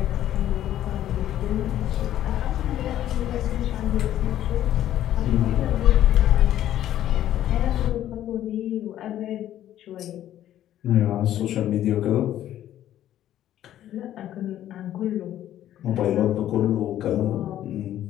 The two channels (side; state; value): right; quieter; 12.2 dB